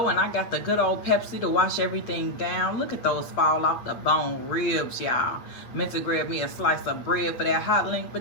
and I got the good old Pepsi to wash everything down. Look at those fall off the bone ribs, y'all. Meant to grab me a slice of bread for that hot link,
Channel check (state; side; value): late; right; 8.7 ms